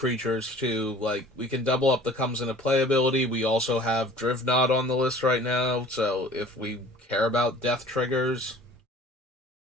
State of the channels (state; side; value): normal; both; correlation 0.48